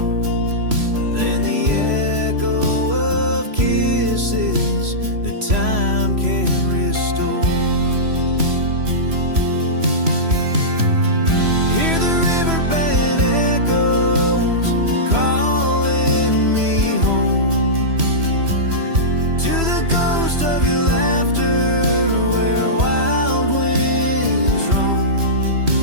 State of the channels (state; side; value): late; left; 3.0 ms